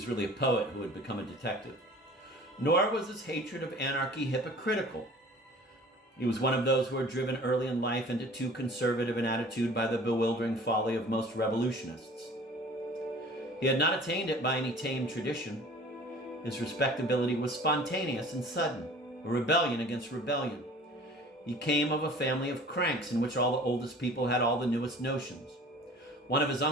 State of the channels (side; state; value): both; normal; correlation 0.45